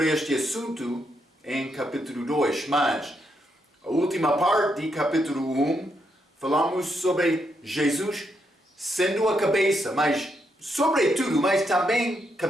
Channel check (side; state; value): both; normal; correlation 0.79